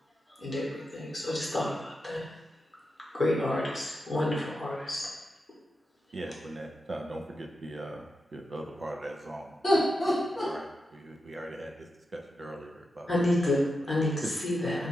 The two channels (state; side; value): normal; both; correlation 0.88